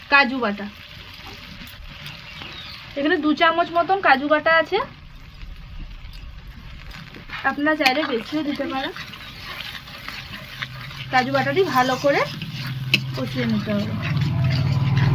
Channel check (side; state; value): both; identical; correlation 1.00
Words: কাজু বাটা। এখানে 2 চামচ মতন কাজু বাটা আছে, আপনারা চাইলে বেশিও দিতে পারেন। কাজু বাটাটি ভালো করে কষিয়ে নিতে হবে।